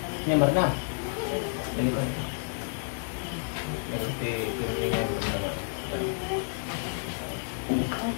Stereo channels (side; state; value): right; silent; digital silence